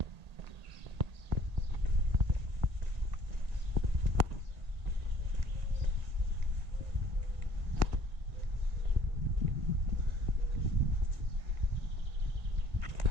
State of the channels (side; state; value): left; late; 1.7 ms